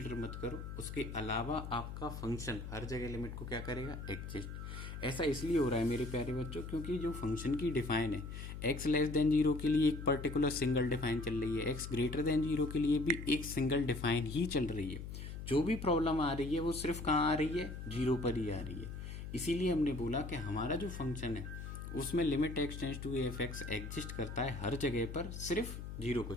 मत करो, उसके अलावा आपका फंक्शन हर जगह लिमिट को क्या करेगा, एग्जिस्ट। ऐसा इसलिए हो रहा है मेरे प्यारे बच्चों क्योंकि जो फंक्शन की डिफाइन है एक्स लेस देन 0 के लिए एक पर्टिकुलर सिंगल डिफाइन चल रही है, एक्स ग्रेटर देन 0 के लिए भी एक सिंगल डिफाइन ही चल रही है। जो भी प्रॉब्लम आ रही है वो सिर्फ कहाँ आ रही है, 0 पर ही आ रही है। इसीलिए हमने बोला कि हमारा जो फंक्शन है उसमें limit X tends to F X exist करता है हर जगह पर, सिर्फ 0 को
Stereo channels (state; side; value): noise; left; hum, 8 dB below the sound